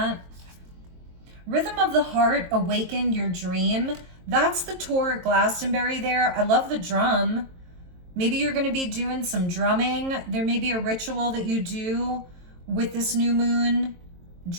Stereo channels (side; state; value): left; late; 23 ms